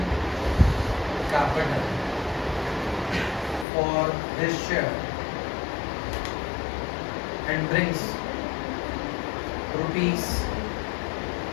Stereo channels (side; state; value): right; drops out; at 3.7 s